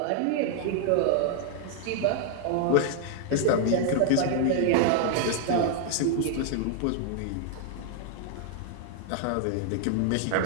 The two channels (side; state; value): both; different; correlation 0.00